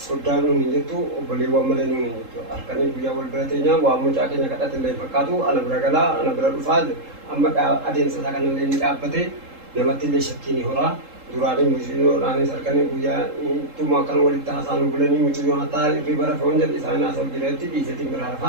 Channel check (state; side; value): late; left; 3.7 ms